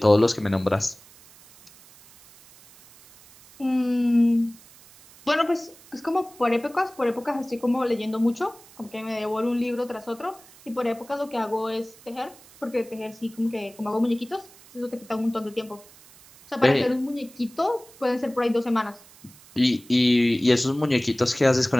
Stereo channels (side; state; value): right; noise; hiss, 24 dB below the sound